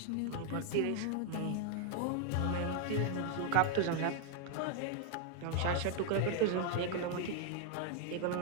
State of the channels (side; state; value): both; different; correlation 0.00